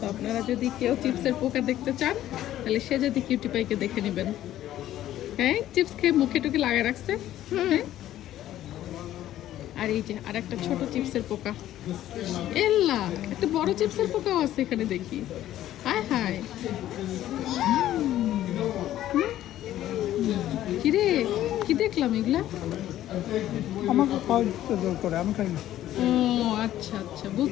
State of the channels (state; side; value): quieter; right; 13.0 dB